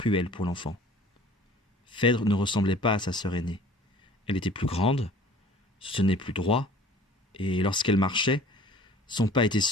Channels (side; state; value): both; normal; correlation 0.49